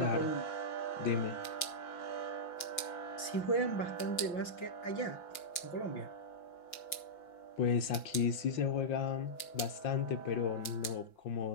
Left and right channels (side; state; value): right; late; 5.7 ms